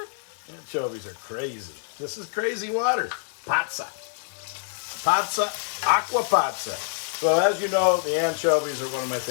Anchovies are crazy. This is crazy water. Pazza. Pazza, Acqua Pazza. So as you know, the anchovies are one of my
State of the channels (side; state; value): right; silent; 61 dB below the other